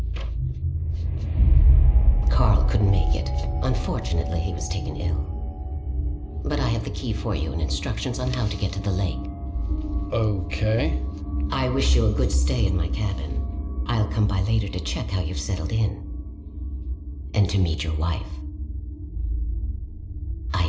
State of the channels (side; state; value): both; identical; correlation 1.00